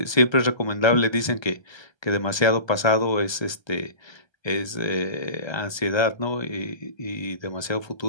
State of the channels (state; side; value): late; right; 1.3 ms